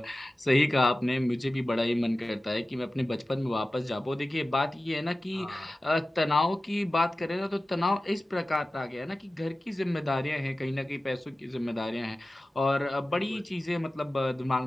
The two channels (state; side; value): normal; both; correlation 0.96